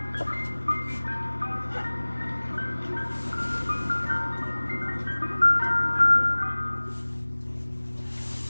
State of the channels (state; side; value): inverted; both; correlation -1.00